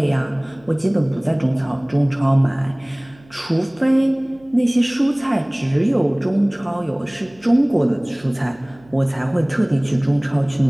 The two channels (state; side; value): noise; right; hum, 27 dB below the sound